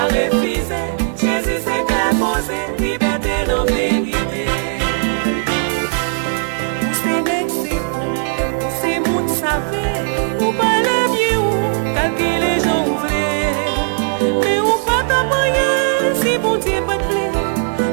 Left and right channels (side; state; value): left; silent; 60 dB below the other